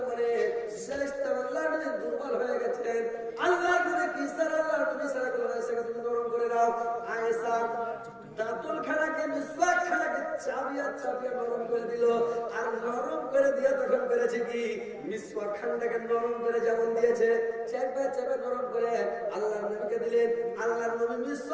মানে আল্লাহর নবী দুর্বল হয়ে গেছেন। আল্লাহর নবী কি স্যার, আল্লাহর নবী স্যার আয়েশাকে তুমি নরম করে দাও। আয়েশা দাঁতল খানাকে, মিসওয়াক খানাকে চাপিয়ে নরম করে দিল। আর নরম করে দিয়ে তখন করেছে কি, মিসওয়াক খানটাকে নরম করে যেমন দিয়েছে, চেপে নরম করে আল্লাহর নবীকে দিলেন। আল্লাহর নবী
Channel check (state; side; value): identical; both; correlation 1.00